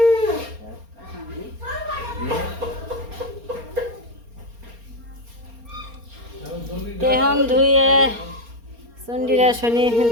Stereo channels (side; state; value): left; late; 4.3 ms